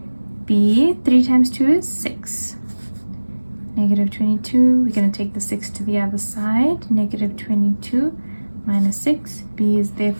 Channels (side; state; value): both; inverted; correlation -1.00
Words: b, 3 times 2 is 6. Negative 22, we're going to take the 6 to the other side. Negative 22 minus 6, b is